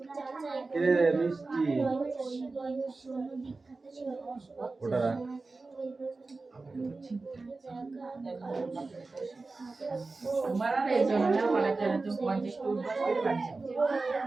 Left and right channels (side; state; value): left; quieter; 3.6 dB